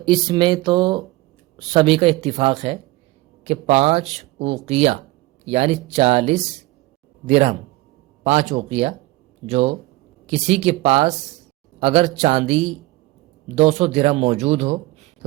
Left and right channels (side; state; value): left; quieter; 19.7 dB